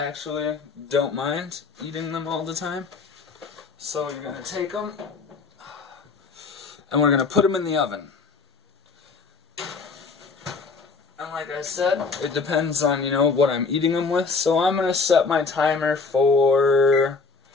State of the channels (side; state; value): right; quieter; 4.6 dB